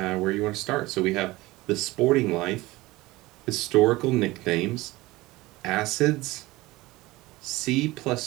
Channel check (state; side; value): quieter; left; 19.7 dB